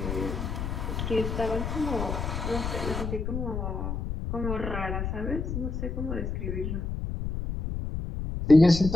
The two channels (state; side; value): noise; left; rumble, 3 dB below the sound